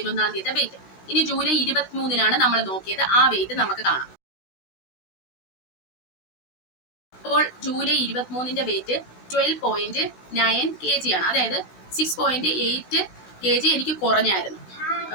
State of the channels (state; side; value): late; right; 16 ms